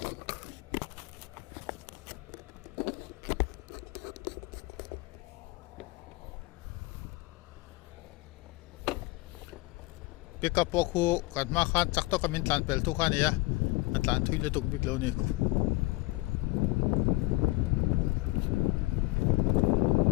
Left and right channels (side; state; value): right; quieter; 22.2 dB